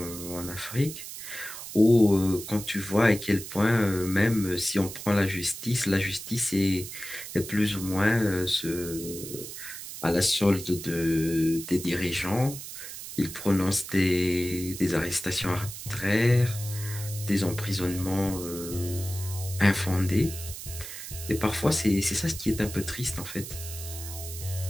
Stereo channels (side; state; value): right; noise; hiss, 10 dB below the sound